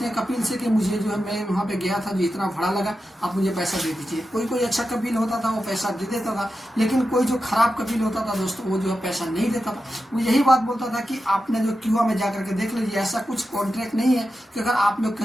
हैं कपील से कि मुझे जो है मैं वहां पे गया था जो इतना भाड़ा लगा, आप मुझे पैसा दे दीजिए। कोई अच्छा कपील होता था वो पैसा दे देता था, लेकिन कोई जो खराब कपील होता था दोस्तों वो जो है पैसा नहीं देता था। वो यही बात बोलता था कि आपने जो क्यूआ में जाकर के देख लीजिए, ऐसा कुछ कॉन्ट्रैक्ट नहीं है कि अगर आप लोग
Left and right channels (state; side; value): normal; both; correlation 0.90